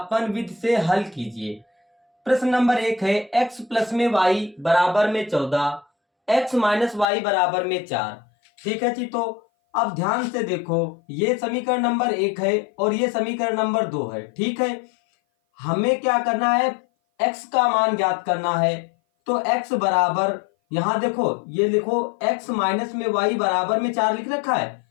विधि से हल कीजिए। प्रश्न नंबर 1 है x प्लस में y बराबर में 14, x माइनस वाई बराबर में 4। ठीक है जी, तो अब ध्यान से देखो, ये समीकरण नंबर 1 है और ये समीकरण नंबर 2 है। ठीक है, हमें क्या करना है, x का मान ज्ञात करना है। तो x बराबर, यहां देखो ये लिखो x माइनस में y बराबर में 4 लिख रखा है,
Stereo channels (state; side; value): drops out; right; at 7.1 s